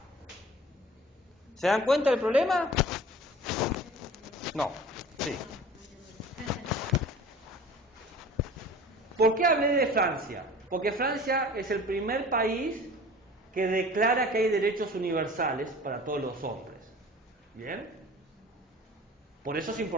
¿Se dan cuenta del problema? No, sí. ¿Por qué hablé de Francia? Porque Francia es el primer país que declara que hay derechos universales para todos los hombres. ¿Bien? Por eso es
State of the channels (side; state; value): both; normal; correlation 0.43